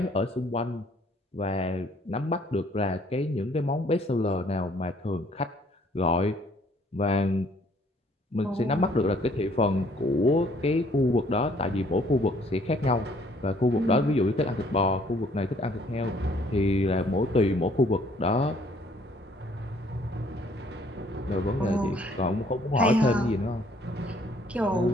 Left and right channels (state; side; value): normal; both; correlation 0.61